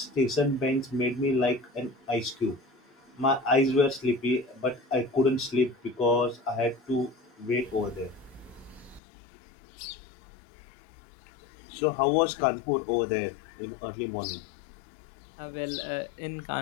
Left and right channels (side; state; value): right; drops out; at 9.0 s